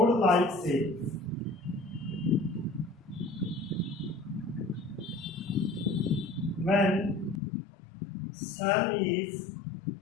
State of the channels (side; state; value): right; drops out; at 7.4 s